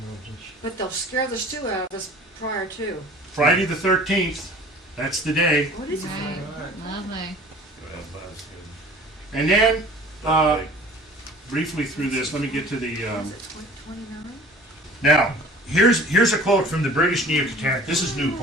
But they'll scare the stew out of us prior to. Friday the 13th, that's the day. What is it? Right. Lovely. And then, briefly through this, let me get to the... Is it 29? Now, here's a quote from the British Neo-Catastrophists. This is new,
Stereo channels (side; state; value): both; normal; correlation 0.46